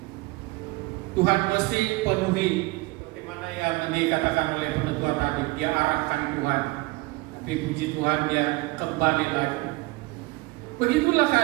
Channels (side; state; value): left; quieter; 22.6 dB